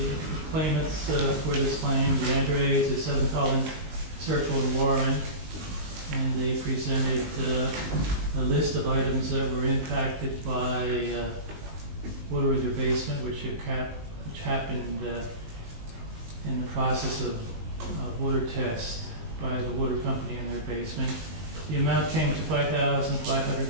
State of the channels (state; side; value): late; left; 19 ms